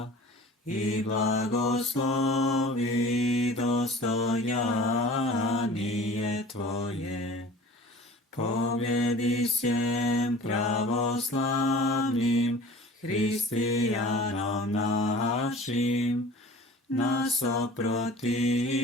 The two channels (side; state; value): both; normal; correlation 0.43